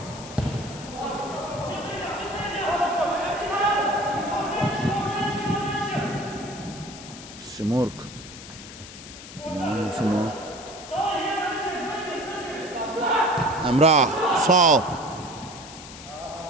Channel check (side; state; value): left; noise; hiss, 15 dB below the sound